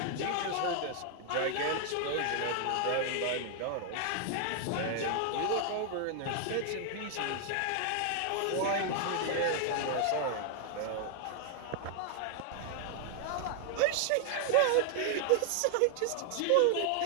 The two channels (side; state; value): both; different; correlation 0.00